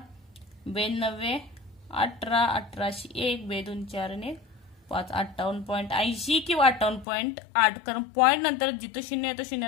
92 18, 18शी 1, 2 2 4 आणि 5, 58.80 किंवा 58.8. कारण पॉइंट नंतर जिथं शून्य येतो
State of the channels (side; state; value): right; drops out; at 7.1 s